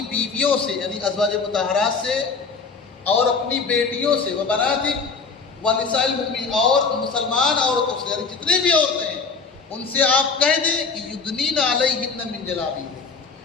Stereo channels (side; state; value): right; quieter; 4.8 dB